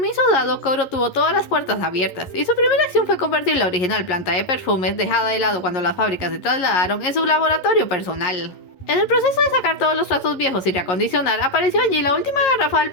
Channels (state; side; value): late; right; 11 ms